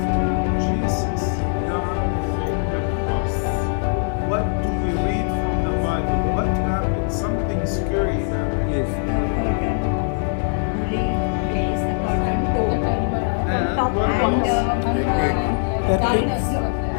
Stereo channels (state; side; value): silent; right; digital silence